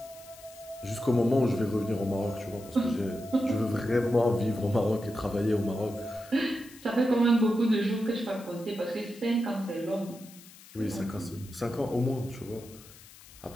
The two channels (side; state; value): left; noise; hiss, 21 dB below the sound